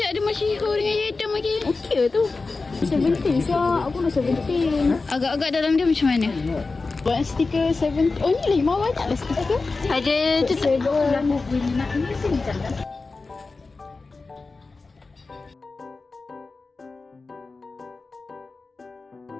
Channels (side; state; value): right; quieter; 3.9 dB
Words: ada Masyihur dengan Yedam lagi. Okey tu. 17 siap. Aku dah 17. Agak-agak dalam dia macam mana? Buat stiker 17. Oh ni lagi mau banyak lah stiker. Ada tu tu. Nak ini sini jangan.